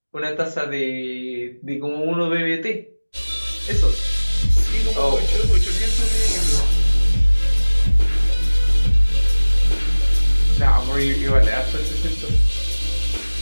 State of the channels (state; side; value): inverted; both; correlation -1.00